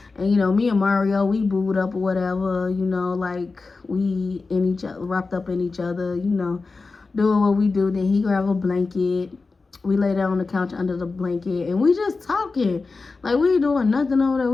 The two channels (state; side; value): quieter; right; 4.0 dB